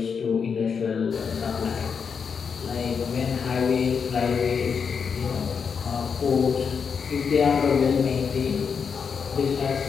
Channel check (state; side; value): quieter; right; 6.2 dB